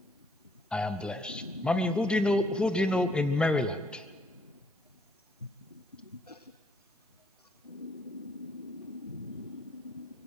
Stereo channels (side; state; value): both; normal; correlation 0.68